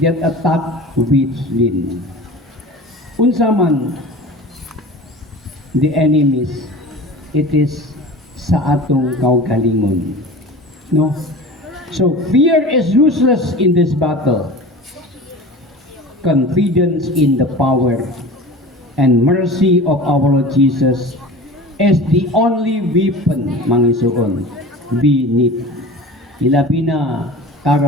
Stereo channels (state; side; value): normal; both; correlation 0.36